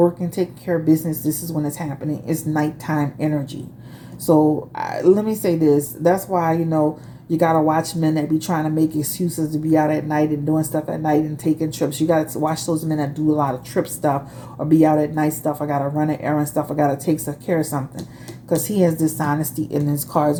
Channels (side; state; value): both; identical; correlation 1.00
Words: taking care of business, this is when it's happening. It's nighttime energy. So let me say this. That's why, you got to watch men that be trying to make excuses to be out at night and doing stuff at night and taking trips. You got to watch those men that do a lot of trip stuff or be out at night stuff. I got to run an errand stuff. I got to take care of something, because he has dishonesty in his cards